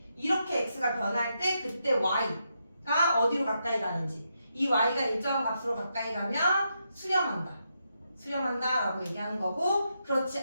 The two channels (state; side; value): inverted; both; correlation -0.82